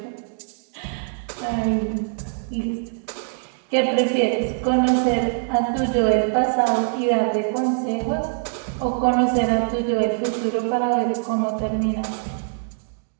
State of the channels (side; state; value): left; silent; 63 dB below the other